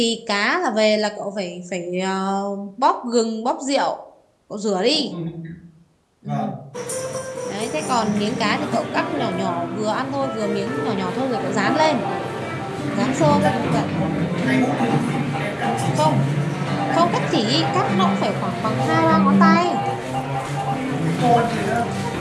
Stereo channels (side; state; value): both; identical; correlation 1.00